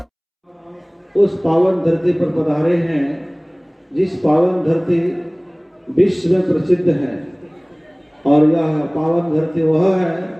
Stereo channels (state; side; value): identical; both; correlation 1.00